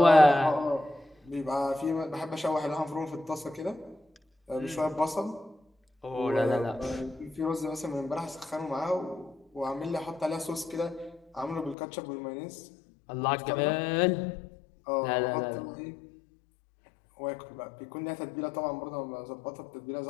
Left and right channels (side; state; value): right; drops out; at 11.8 s